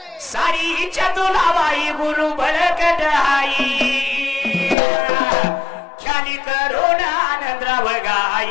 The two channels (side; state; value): right; drops out; at 4.8 s